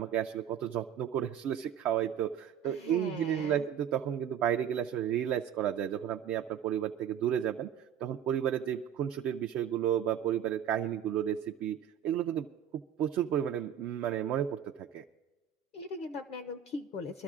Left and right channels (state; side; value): quieter; left; 9.2 dB